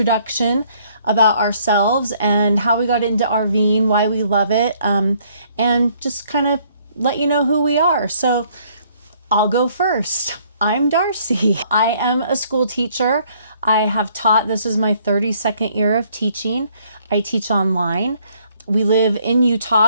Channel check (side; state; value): both; inverted; correlation -0.64